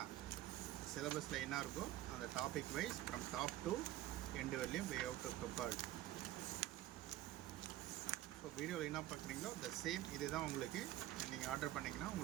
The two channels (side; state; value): left; quieter; 14.6 dB